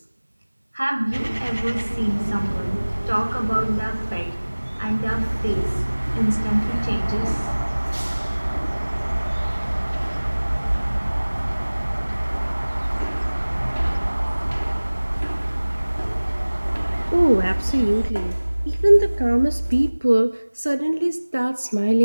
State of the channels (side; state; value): both; inverted; correlation -1.00